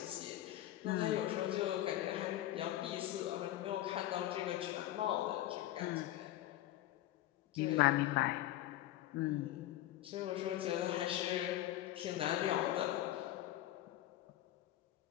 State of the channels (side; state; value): right; quieter; 14.2 dB